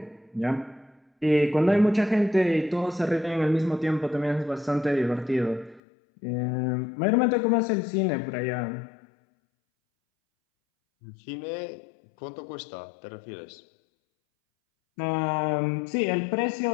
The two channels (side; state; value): right; drops out; at 5.8 s